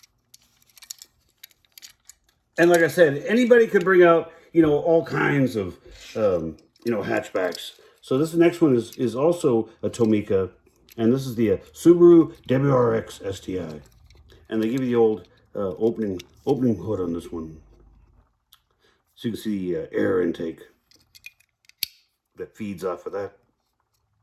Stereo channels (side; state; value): both; identical; correlation 1.00